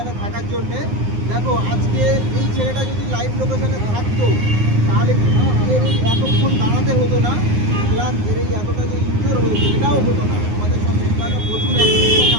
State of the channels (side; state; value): left; late; 9.6 ms